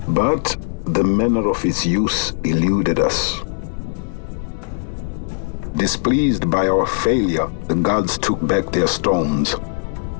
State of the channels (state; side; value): silent; right; 66 dB below the other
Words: But the manner of its use eluded us. Displeased by our failure, the gods took back their stones.